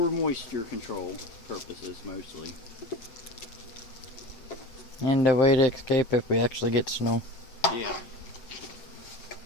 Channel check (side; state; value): right; late; 7.7 ms